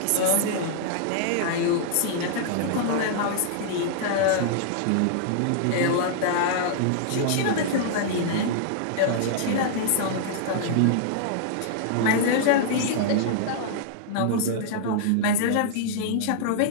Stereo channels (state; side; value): different; both; correlation -0.01